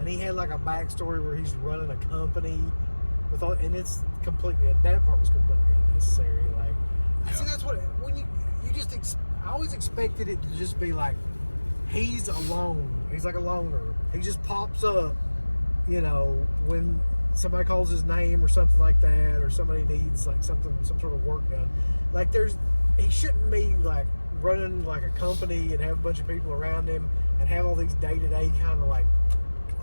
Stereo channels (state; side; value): inverted; both; correlation -1.00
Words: he had like a backstory where he's running a company with all, and it's completely, and that part was completely unnecessary. Like, Yeah. see, that's what, when I always expected it to just be like, he's alone. He's like a loner. He just pops up, you know, when somebody calls his name or something like that, or somebody needs like some sort of work done. Like he shouldn't be like running like a company and have a bunch of people around him and have all these day-to-day kind of like